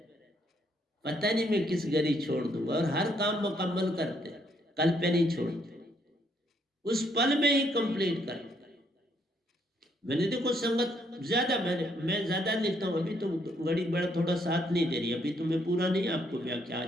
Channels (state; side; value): normal; both; correlation 0.71